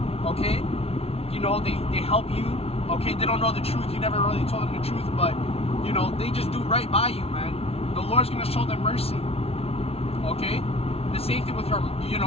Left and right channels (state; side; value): late; right; 0.29 ms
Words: Okay? You know, they help you. Okay? They don't know the truth. You never really told them the truth, but, you know, they just do right by you, man. The Lord's going to show them mercy. Okay? The same thing with her, you